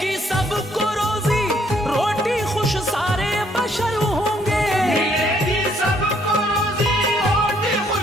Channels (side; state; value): both; normal; correlation 0.67